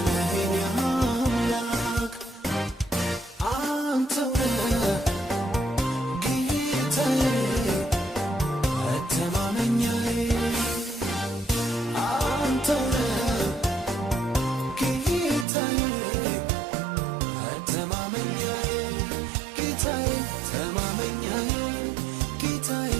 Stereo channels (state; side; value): drops out; left; at 15.5 s